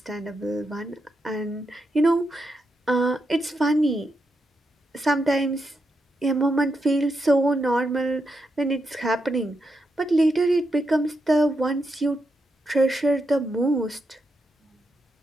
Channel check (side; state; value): both; normal; correlation 0.84